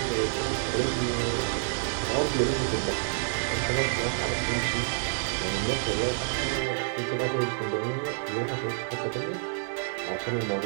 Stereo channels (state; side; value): silent; left; digital silence